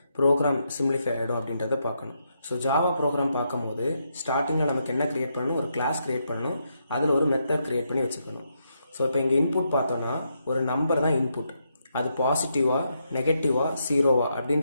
ப்ரோக்ராம் சிம்பிளிஃபை ஆகிடும் அப்படின்றத பார்க்கணும். ஸோ ஜாவா ப்ரோக்ராம் பார்க்கும்போது ஸ்டார்டிங்கில் நமக்கு என்ன கிரியேட் பண்ணணும், ஒரு கிளாஸ் கிரியேட் பண்ணணும், அதில் ஒரு மெத்தட் கிரியேட் பண்ணி வச்சுக்கணும். ஸோ இப்போ இங்கே இன்புட் பார்த்தோன்னா ஒரு நம்பர் தான் இன்புட், அது பாசிட்டிவா நெகட்டிவா ஜீரோவா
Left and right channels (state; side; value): inverted; both; correlation -0.80